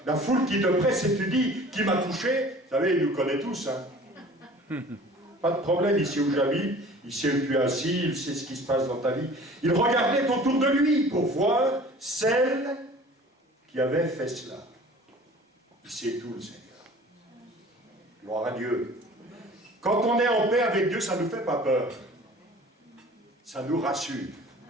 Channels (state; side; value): normal; both; correlation 0.46